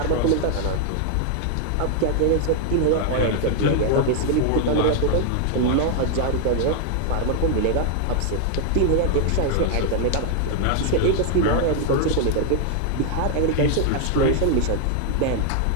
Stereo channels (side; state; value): both; different; correlation 0.00